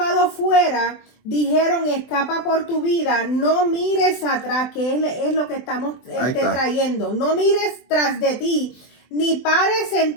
fuera, dijeron, escapa por tu vida, no mires atrás, que es lo que estamos trayendo. No mires tras de ti, ni pares en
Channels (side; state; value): right; late; 24 ms